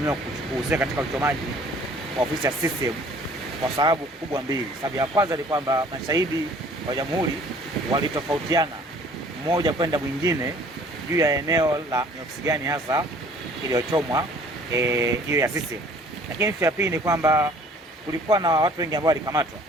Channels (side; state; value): both; normal; correlation 0.54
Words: kuhusika katika uchomaji wa ofisi ya CCM kwa sababu kubwa mbili. Sababu ya kwanza ni kwamba mashahidi wa Jamhuri walitofautiana mmoja kwenda mwingine juu ya eneo la ni ofisi gani hasa iliyochomwa hiyo ya CCM. Lakini ya pili ni kwamba kulikuwa na watu wengi ambao walikamatwa.